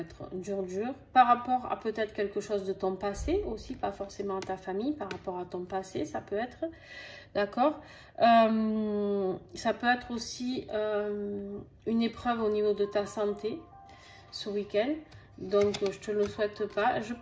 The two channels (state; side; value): identical; both; correlation 1.00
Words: dur par rapport à peut-être quelque chose de ton passé aussi, pas forcément à ta famille, par rapport à ton passé ça peut être, d'accord. Ça peut être aussi une épreuve au niveau de ta santé ce week-end. Donc, je te le souhaite pas. Je